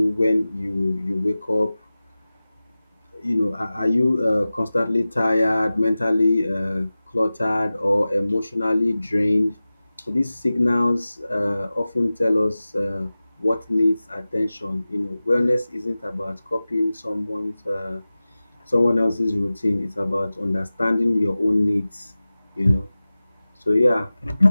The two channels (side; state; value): both; inverted; correlation -0.97